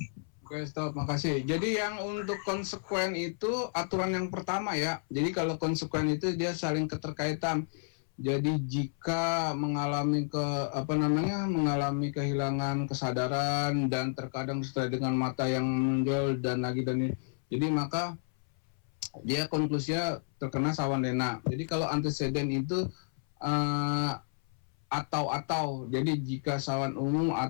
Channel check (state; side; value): silent; right; 57 dB below the other